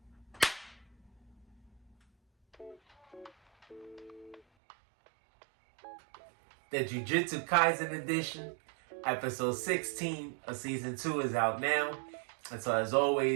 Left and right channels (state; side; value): drops out; left; at 4.4 s